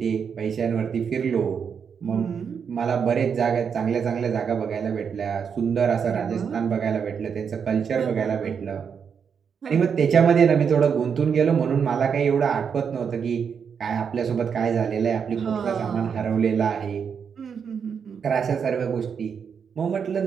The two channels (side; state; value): left; quieter; 6.8 dB